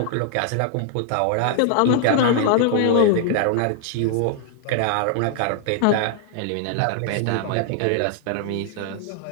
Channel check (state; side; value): different; both; correlation -0.01